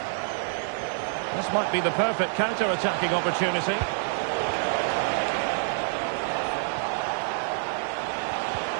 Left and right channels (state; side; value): silent; left; digital silence